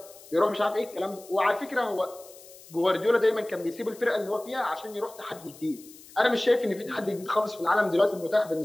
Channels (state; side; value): noise; left; hiss, 21 dB below the sound